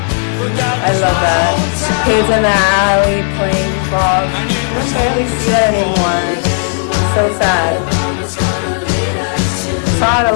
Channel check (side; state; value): right; silent; 57 dB below the other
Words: But that I was love my that. hometown, Kids in the alley playing ball. and it was I don't home see that anymore. It's so sad. Saw it a